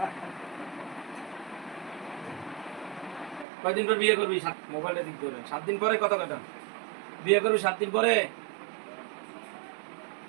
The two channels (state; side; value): drops out; left; at 3.5 s